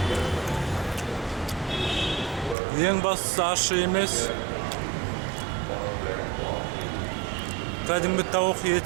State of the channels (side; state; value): left; drops out; at 2.6 s